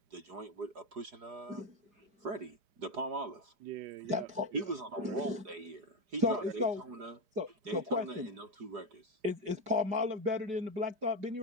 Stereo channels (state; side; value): late; left; 5.1 ms